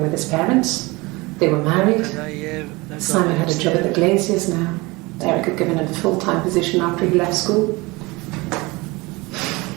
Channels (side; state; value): left; quieter; 23.6 dB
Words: with his parents. They were married. Anna et Eve. D'accord. Simon had a job at the Glaziers now. Eric had given him a full-time position after he left school.